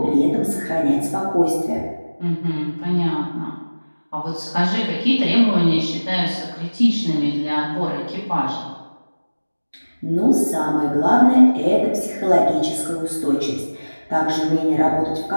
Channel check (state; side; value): inverted; both; correlation -1.00